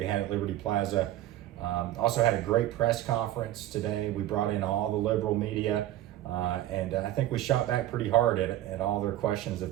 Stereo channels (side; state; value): left; quieter; 13.8 dB